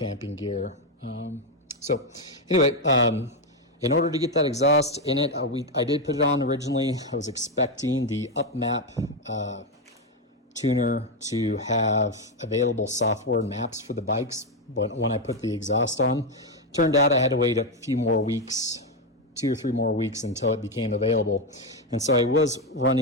gear. So anyway, in order to get that exhaust in it, I did put it on originally. I was expecting the UpMap tuner to have available software maps for the bikes when I put the exhaust on. Turned out I had to wait a few more weeks, 2 or 3 more weeks until it became available. And so I was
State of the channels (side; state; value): both; normal; correlation 0.07